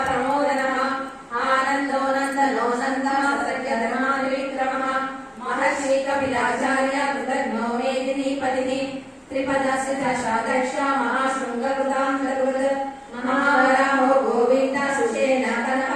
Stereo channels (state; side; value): identical; both; correlation 1.00